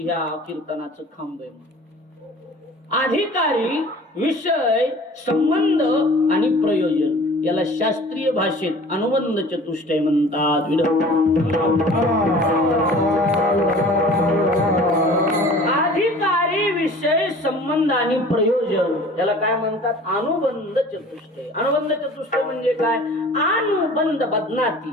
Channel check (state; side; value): normal; both; correlation 0.45